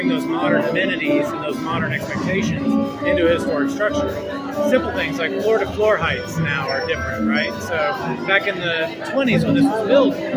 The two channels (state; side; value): identical; both; correlation 1.00